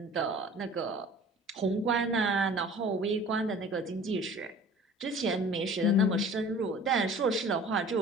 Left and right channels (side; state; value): both; normal; correlation 0.45